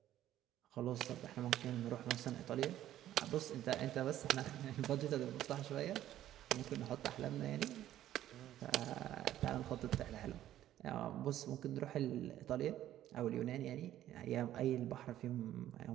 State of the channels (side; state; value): left; quieter; 12.6 dB